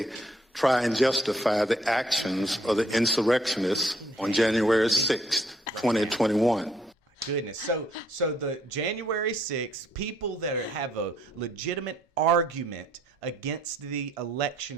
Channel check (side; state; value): both; normal; correlation 0.67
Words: try and justify the actions of the insurrectionists on January 6th, 2021. Goodness. So the January 6th, people that have a legitimate argument against the